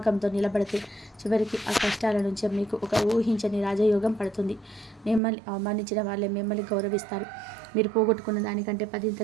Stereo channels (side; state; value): left; drops out; at 5.2 s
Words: నిలబడితే చివరికి ఆ కష్టాల నుంచి మీకు ఒక ఊహించని రాజయోగం పడుతుంది. మిమ్మల్ని అవమానించిన వాళ్ళే మిమ్మల్ని గౌరవిస్తారు. మీరు పోగొట్టుకున్న దానికంటే